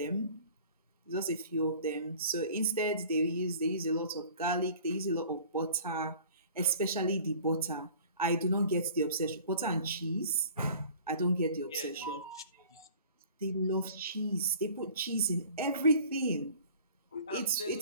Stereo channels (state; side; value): inverted; both; correlation -0.47